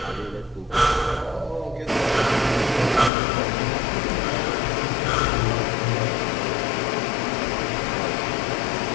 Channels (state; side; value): drops out; right; at 3.1 s